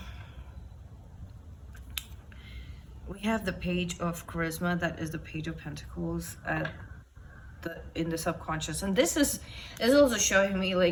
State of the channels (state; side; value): identical; both; correlation 1.00